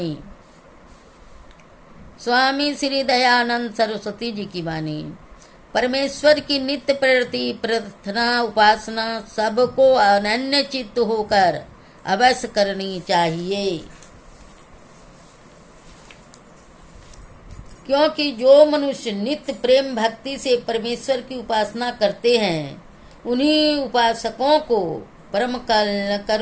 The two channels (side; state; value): both; identical; correlation 1.00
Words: स्वामी श्री दयानंद सरस्वती जी की वाणी। परमेश्वर की नित्य प्रति प्रार्थना उपासना सबको अनन्य चित्त होकर अवश्य करनी चाहिए, क्योंकि जो मनुष्य नित्य प्रेम भक्ति से परमेश्वर की उपासना करते हैं उन्हीं उपासकों को परम